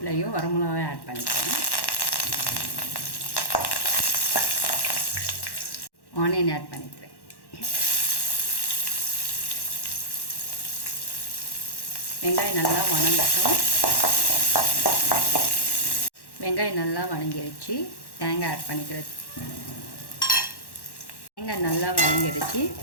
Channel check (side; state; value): right; late; 1.1 ms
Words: வரமிளகாயும் ஆட் பண்ணிக்கிறேன், ஆனியன் ஆட் பண்ணிக்கிறேன். வெங்காயம் நல்லா வணங்கட்டும். வெங்காயம் நல்லா வணங்கிடுச்சு, தேங்காய் ஆட் பண்ணிக்கிறது. தேங்காய் நல்லா வணங்கிடுச்சு,